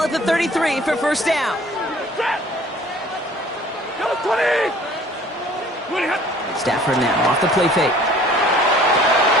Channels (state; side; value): normal; both; correlation 0.52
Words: at the 33 for first down. Stafford now off the play fake.